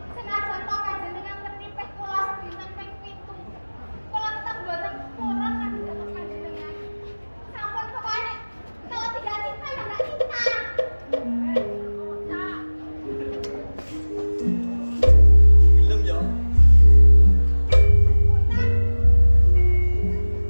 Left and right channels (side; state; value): both; inverted; correlation -1.00